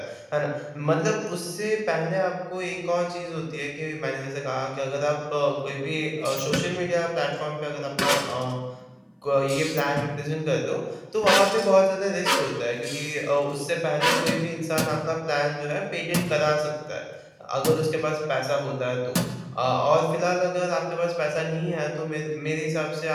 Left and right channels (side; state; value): both; identical; correlation 1.00